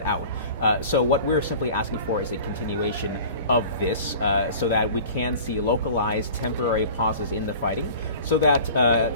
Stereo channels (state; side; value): inverted; both; correlation -0.42